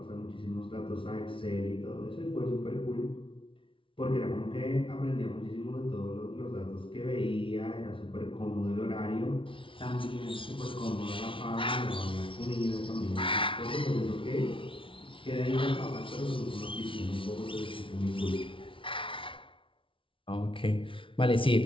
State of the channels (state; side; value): late; right; 0.25 ms